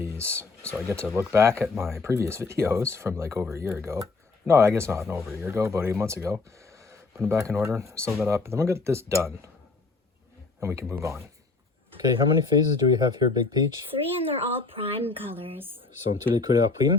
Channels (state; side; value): quieter; right; 3.9 dB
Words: So I get to look back at my previous videos from like over a year ago. No, I guess not over a year ago, about 8 months ago. Put them back in order, sew that up, and then we'll get this done. And we can move on. Okay, how many phases do we have here, Big Peach? 3, and they're all prime colors. Sont tous les couleurs